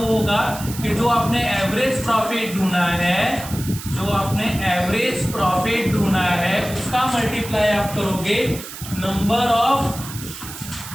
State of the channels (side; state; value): right; noise; hiss, 12 dB below the sound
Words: होगा कि जो आपने एवरेज प्रॉफिट ढूंढा है, उसका मल्टीप्लाई आप करोगे number of